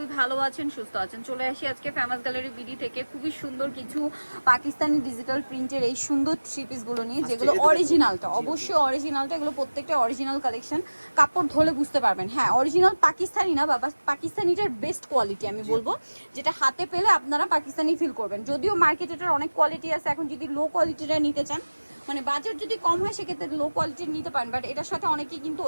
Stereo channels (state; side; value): inverted; both; correlation -1.00